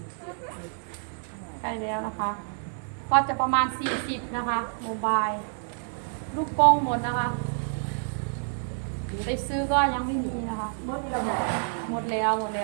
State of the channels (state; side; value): silent; left; 59 dB below the other